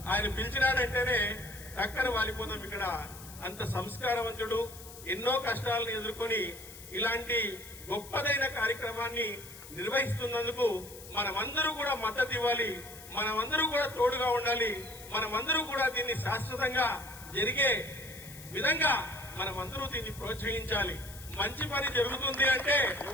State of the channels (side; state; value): left; noise; hiss, 16 dB below the sound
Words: ఆయన పిలిచినాడంటేనే టక్కన వాలిపోతాం. ఇక్కడ అంత సంస్కారవంతుడు, ఎన్నో కష్టాలను ఎదుర్కొని ఇలాంటి గొప్పదైన కార్యక్రమాన్ని నిర్వహిస్తున్నందుకు మనమందరూ కూడా మద్దతు ఇవ్వాలి, మనమందరూ కూడా తోడుగా ఉండాలి, మనమందరూ కూడా దీన్ని శాశ్వతంగా జరిగే విధంగా మనమందరూ దీన్ని ప్రోత్సహించాలి. మంచి పని జరుగుతుంది